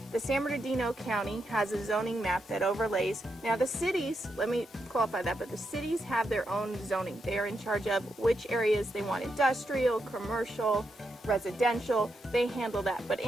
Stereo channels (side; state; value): both; normal; correlation 0.83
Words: San Bernardino County has a zoning map that overlays. Now the cities, let me qualify that, but the cities have their own zoning. They are in charge of which areas they want industrial, commercial, residential. They handle that. But